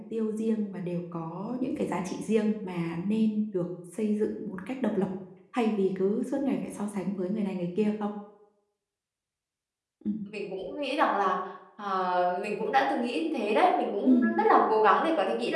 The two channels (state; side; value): identical; both; correlation 1.00